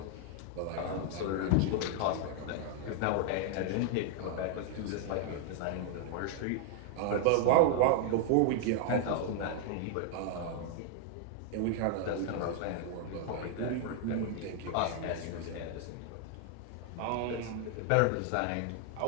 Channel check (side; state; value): both; different; correlation 0.00